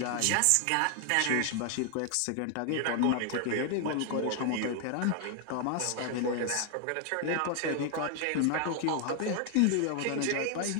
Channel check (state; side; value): different; both; correlation 0.00